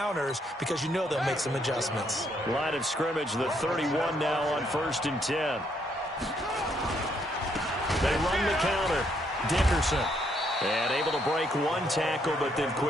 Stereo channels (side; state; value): both; normal; correlation 0.72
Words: because you know they'll make some adjustments. Line of scrimmage, the 31 now on 1st and 10. They run the counter. Dickerson. And able to break one tackle, but then